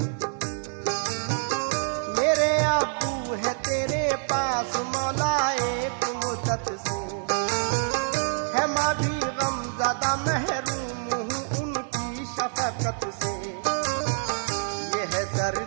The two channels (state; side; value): silent; left; digital silence